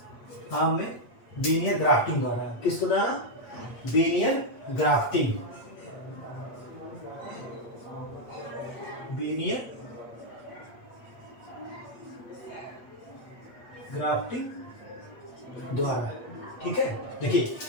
आम में बीनियर ग्राफ्टिंग द्वारा। किसके द्वारा? बीनियर ग्राफ्टिंग। बीनियर ग्राफ्टिंग द्वारा। ठीक है। देखिए,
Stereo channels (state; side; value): late; right; 8.3 ms